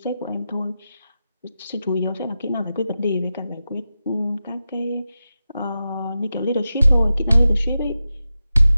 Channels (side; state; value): both; inverted; correlation -0.92